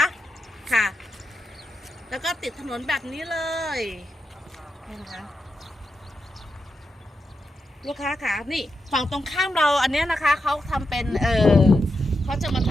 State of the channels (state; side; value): normal; both; correlation 0.87